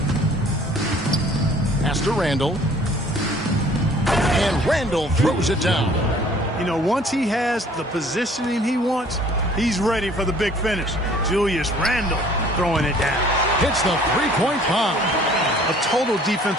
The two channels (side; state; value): both; normal; correlation 0.54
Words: Pass to Randall. And Randall throws it down. You know, once he has the positioning he wants, he's ready for the big finish. Julius Randle throwing it down. Hits the three-point bomb. A total